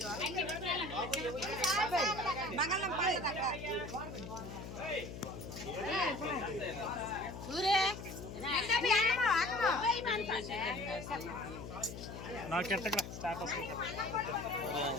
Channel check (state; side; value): noise; left; hum, 9 dB below the sound